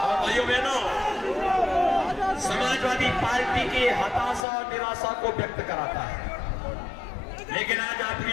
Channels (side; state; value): right; drops out; at 4.5 s